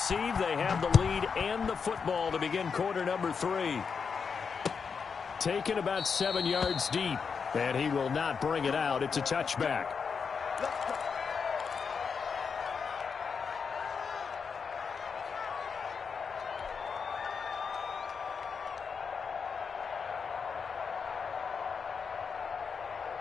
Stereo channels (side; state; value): right; quieter; 5.8 dB